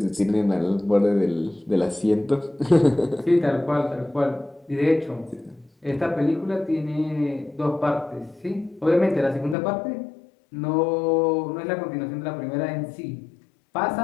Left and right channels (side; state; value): right; drops out; at 9.6 s